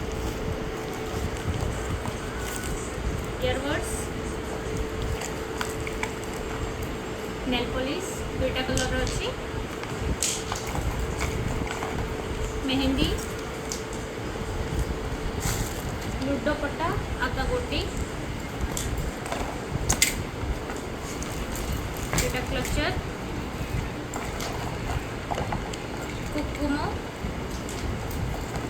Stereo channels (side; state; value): both; identical; correlation 1.00